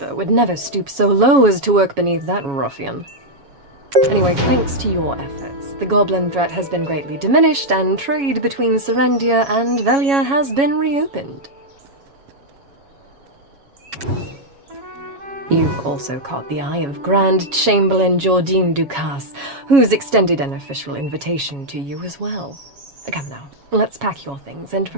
would never stoop so low as to work beneath that ruffian. Anyway, thanks to your efforts, the goblin threat has been greatly diminished, and trade between Serendia and Velia has been reopened. You've also caught the eye of Grand Chamberlain Jordine Ducasse, who's extended an official invitation to you as well. Come now, let's pack your things and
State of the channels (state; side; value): late; left; 7.2 ms